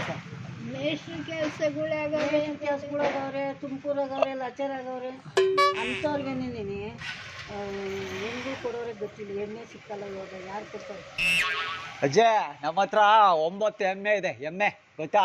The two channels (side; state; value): both; identical; correlation 1.00